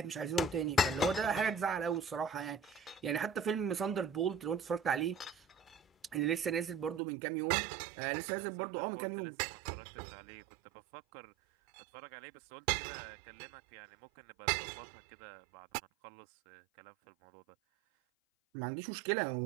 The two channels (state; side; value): drops out; left; at 7.0 s